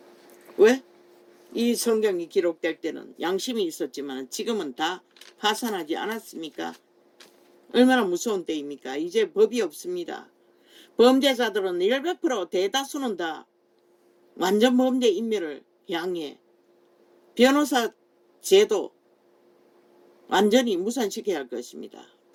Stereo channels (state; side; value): identical; both; correlation 1.00